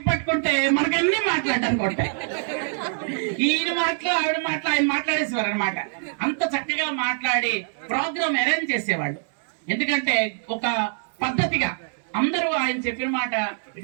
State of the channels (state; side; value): silent; left; digital silence